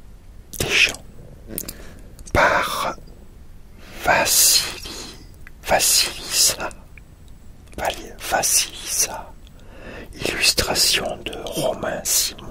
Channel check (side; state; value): both; identical; correlation 1.00